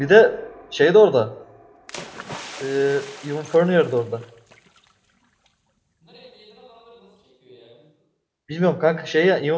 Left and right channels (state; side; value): identical; both; correlation 1.00